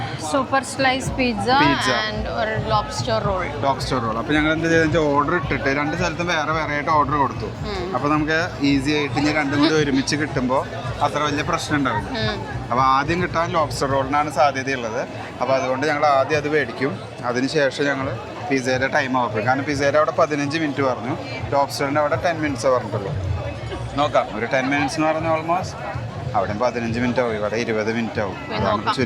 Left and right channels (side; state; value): both; identical; correlation 1.00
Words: സൂപ്പർ സ്ലൈസ് പിസ്സ ആൻഡ് ഒരു ലോബ്സ്റ്റർ റോൾ. അപ്പോൾ ഞങ്ങൾ എന്ത് ചെയ്തെന്ന് വെച്ചാൽ ഓർഡർ ഇട്ടിട്ട് 2 സ്ഥലത്തും വേറെ വേറെ ആയിട്ട് ഓർഡർ കൊടുത്തു. അപ്പോൾ നമുക്ക് ഈസി ആയിട്ട് ഇനി രണ്ടും കൂടി ഒരുമിച്ച് കിട്ടുമ്പോൾ അത്ര വലിയ പ്രശ്നം ഉണ്ടാവില്ല. അപ്പോൾ ആദ്യം കിട്ടാൻ ലോബ്സ്റ്റർ റോളിനാണ് സാധ്യതയുള്ളത്. അപ്പോൾ അതുകൊണ്ട് ഞങ്ങൾ ആദ്യം അത് മേടിക്കും. അതിനുശേഷം ഞങ്ങൾ പിസ്സയുടെ ടൈം ആവും. കാരണം പിസ്സയുടെ അവിടെ 15 മിനിറ്റ് പറഞ്ഞു, ലോബ്സ്റ്ററിൻ്റെ അവിടെ 10 മിനിറ്റ്സ് പറഞ്ഞിട്ടുള്ളൂ. നോക്കാം, ഒരു 10 മിനിറ്റ്സ് എന്ന് പറഞ്ഞാൽ ഓൾമോസ്റ്റ് അവിടെ 15 മിനിറ്റ് ആവും, ഇവിടെ 20 മിനിറ്റ് ആവും. അതാണ്